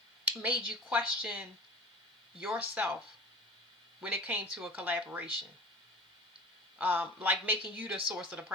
made you question yourself when it came to a collaboration. like making you the source of the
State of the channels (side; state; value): both; normal; correlation 0.38